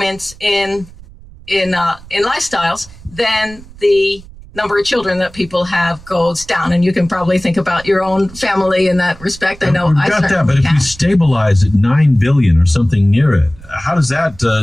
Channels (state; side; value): noise; right; rumble, 20 dB below the sound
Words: in lifestyles, then the number of children that people have goes down. And you can probably think about your own family in that respect. I know I got that, but if we stabilize at 9 billion or something near it, how does that